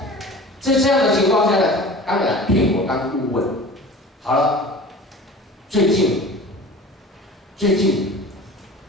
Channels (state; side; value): normal; both; correlation 0.39